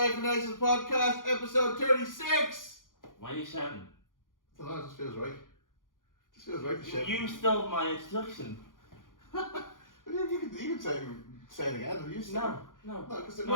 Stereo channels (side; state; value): right; late; 0.89 ms